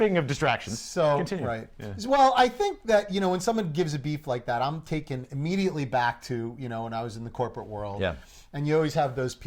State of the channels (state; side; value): identical; both; correlation 1.00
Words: of distractions, so continue. Right. Yeah. Well, I think that when someone gives a beef like that, I'm taken immediately back to when I was in the corporate world. Yeah. And you always have those